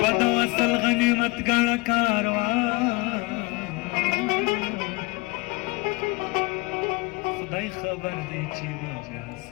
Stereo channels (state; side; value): quieter; right; 24.5 dB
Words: د وصل غنیمت کړه کاروانه خدای خبر دی چې ما بیا